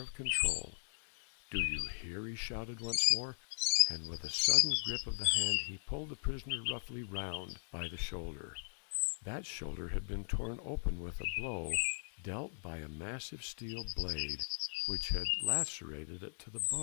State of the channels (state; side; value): silent; right; digital silence